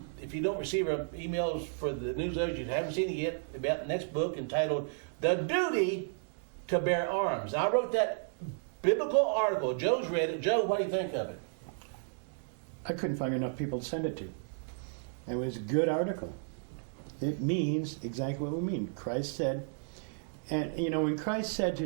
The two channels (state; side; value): silent; left; digital silence